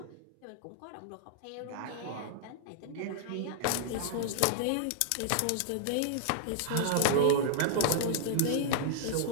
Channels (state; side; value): different; both; correlation -0.01